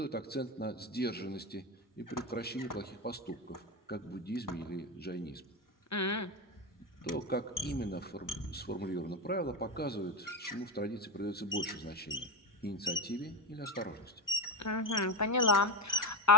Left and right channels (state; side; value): normal; both; correlation 0.15